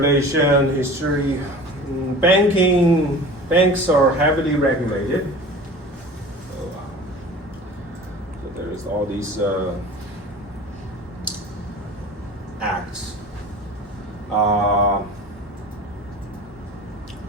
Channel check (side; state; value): both; normal; correlation 0.39